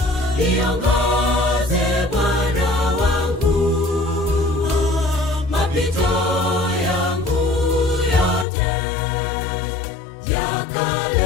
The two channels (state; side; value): drops out; right; at 8.5 s